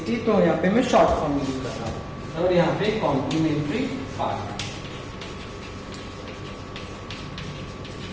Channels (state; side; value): identical; both; correlation 1.00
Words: तो यहाँ पे मैं शॉर्ट फॉर्म यूज कर रहा हूं, और यहाँ पे कॉम्प्लीमेंट्री पार्ट।